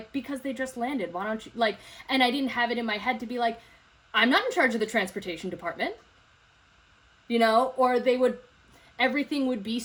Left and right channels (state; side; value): identical; both; correlation 1.00